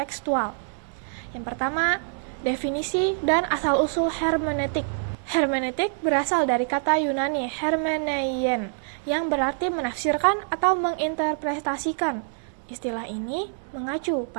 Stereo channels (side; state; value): left; silent; digital silence